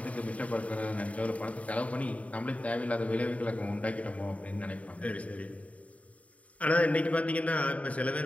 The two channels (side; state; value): right; late; 0.067 ms